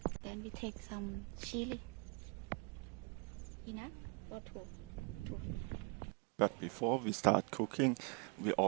Then we take some chili. Enough or two? But before we start cooking, we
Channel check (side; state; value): left; quieter; 31.2 dB